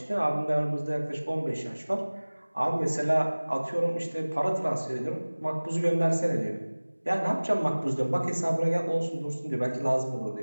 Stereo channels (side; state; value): both; inverted; correlation -1.00